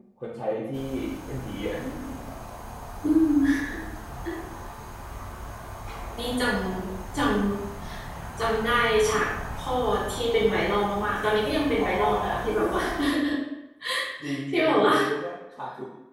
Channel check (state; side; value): identical; both; correlation 1.00